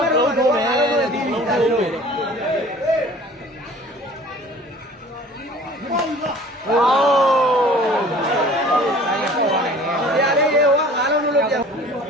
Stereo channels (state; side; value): normal; both; correlation 0.47